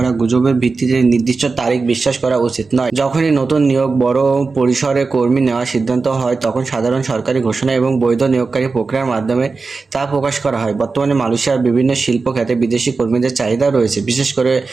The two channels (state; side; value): quieter; left; 4.2 dB